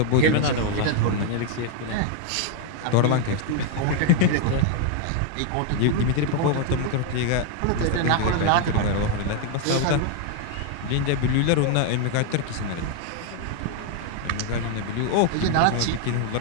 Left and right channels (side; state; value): both; different; correlation 0.01